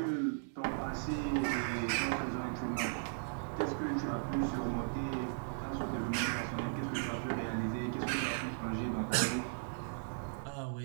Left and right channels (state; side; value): silent; left; digital silence